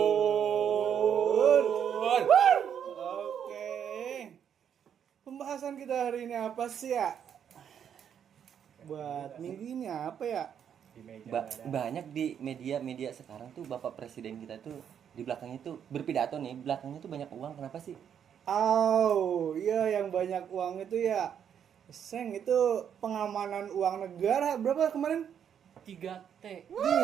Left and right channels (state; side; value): quieter; left; 8.5 dB